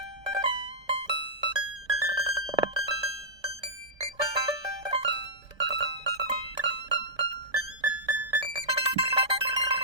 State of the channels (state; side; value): late; left; 1.2 ms